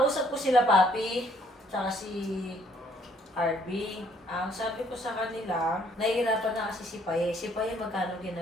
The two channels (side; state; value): both; normal; correlation 0.64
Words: ko sila, Papi, tsaka si RB. Ang sabi ko sa kanila, nahihirapan na kasi si Paye. Si Paye magkano